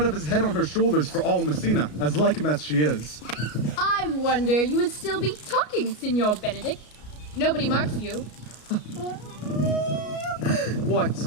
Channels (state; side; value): late; right; 33 ms